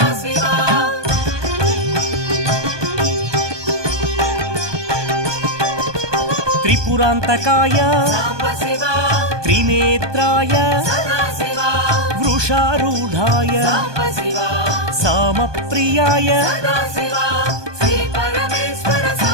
త్రిపురాంతకాయ త్రినేత్రాయ వృషారూఢాయ సామప్రియాయ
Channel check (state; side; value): late; left; 1.2 ms